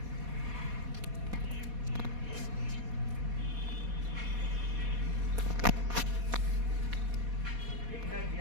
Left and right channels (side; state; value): left; late; 4.2 ms